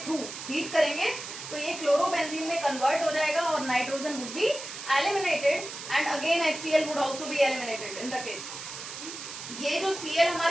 थ्रू हीट करेंगे तो ये क्लोरोबेंजीन में कन्वर्ट हो जाएगा और nitrogen would be eliminated and again HCl would also be eliminated in the case. ये जो Cl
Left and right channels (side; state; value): right; noise; hiss, 10 dB below the sound